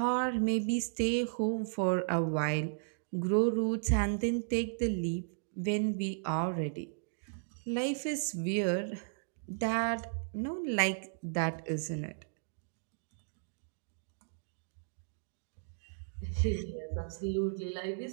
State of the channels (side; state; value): left; silent; digital silence